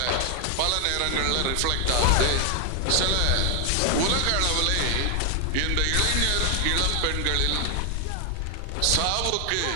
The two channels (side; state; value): both; different; correlation 0.00